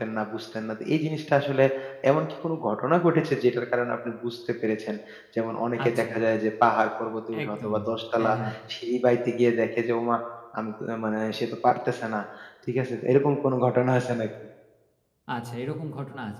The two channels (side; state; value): both; identical; correlation 1.00